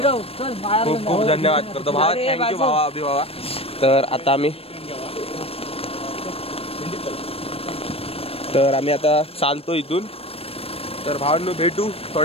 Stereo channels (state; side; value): late; right; 0.28 ms